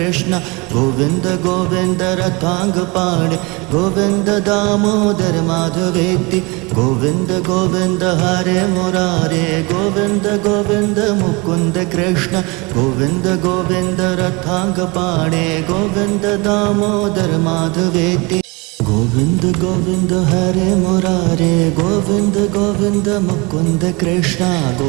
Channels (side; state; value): left; quieter; 26.9 dB